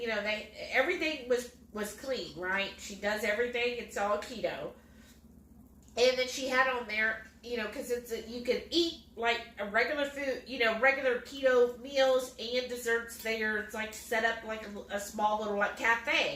everything was clean, right? She does everything. It's all keto. And then she had on there, because you can eat like a regular food, regular keto meals and desserts there. It's like set up like a small little like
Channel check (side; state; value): both; identical; correlation 1.00